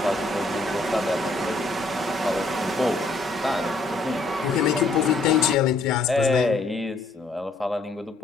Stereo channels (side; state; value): right; quieter; 3.2 dB